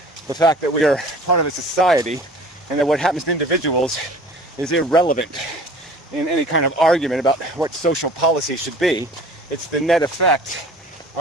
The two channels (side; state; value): both; normal; correlation 0.45